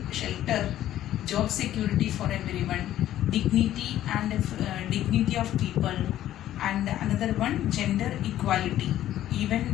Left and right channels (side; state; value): right; quieter; 12.7 dB